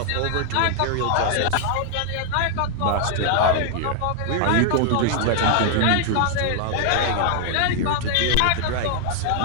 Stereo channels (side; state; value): both; different; correlation 0.00